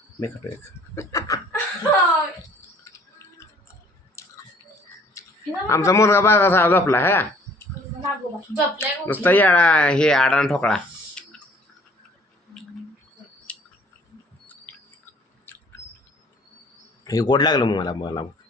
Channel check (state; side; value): normal; both; correlation 0.56